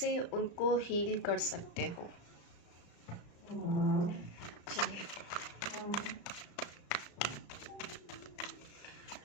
उनको हील कर सकते हो। चलिए,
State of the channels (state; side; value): late; right; 34 ms